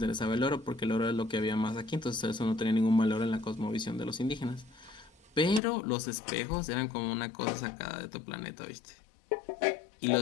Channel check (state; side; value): drops out; right; at 5.6 s